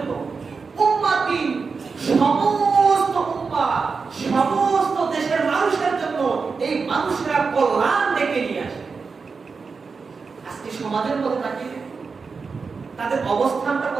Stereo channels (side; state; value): left; quieter; 4.9 dB